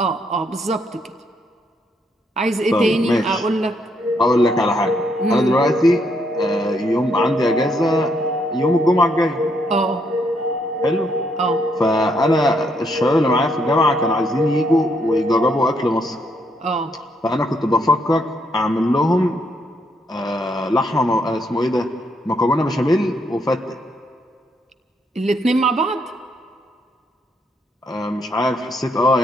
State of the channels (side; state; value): both; normal; correlation 0.74